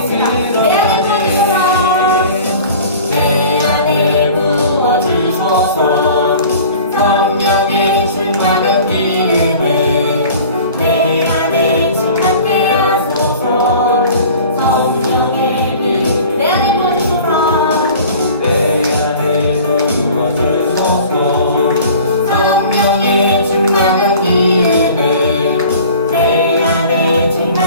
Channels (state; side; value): inverted; both; correlation -0.44